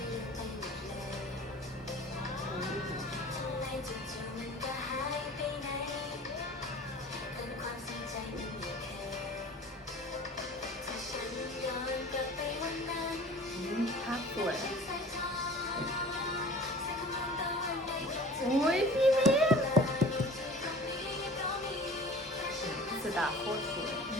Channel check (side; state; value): both; normal; correlation 0.43